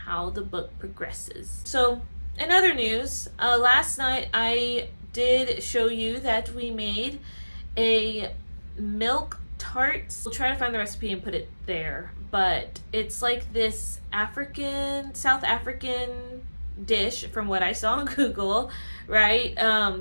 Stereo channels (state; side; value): inverted; both; correlation -1.00